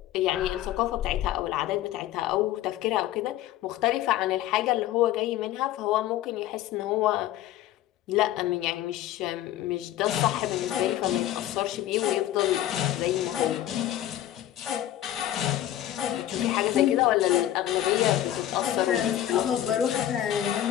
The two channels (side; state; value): right; quieter; 12.9 dB